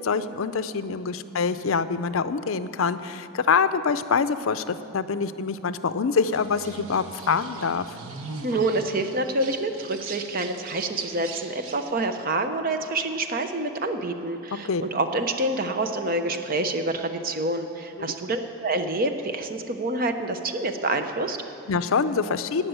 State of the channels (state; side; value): normal; both; correlation -0.07